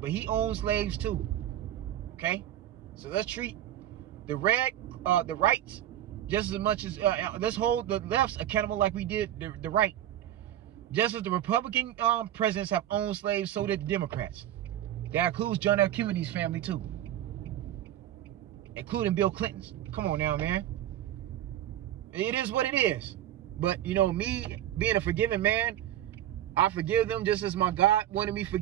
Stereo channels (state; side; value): quieter; left; 12.2 dB